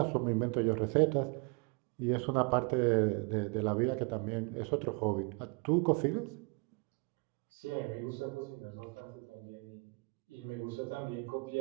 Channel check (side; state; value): left; quieter; 31.3 dB